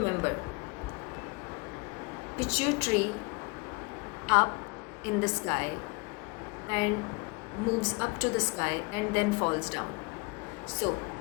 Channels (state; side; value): quieter; right; 29.5 dB